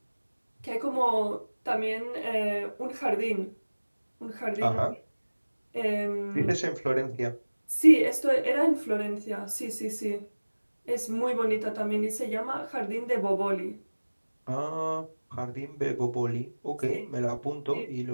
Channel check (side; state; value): both; inverted; correlation -1.00